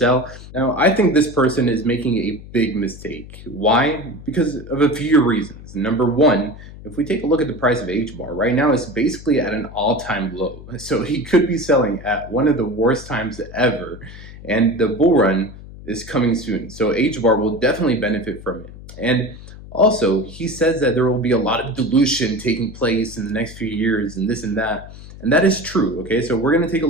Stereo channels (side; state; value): left; noise; hum, 16 dB below the sound